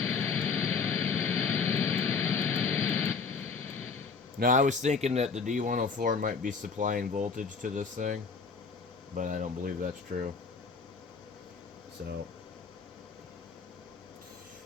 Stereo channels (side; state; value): right; quieter; 5.1 dB